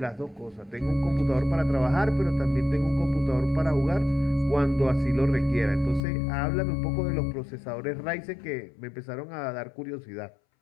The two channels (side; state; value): right; drops out; at 6.0 s